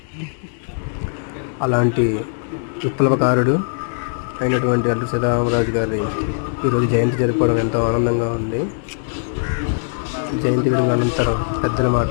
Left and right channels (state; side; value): silent; right; digital silence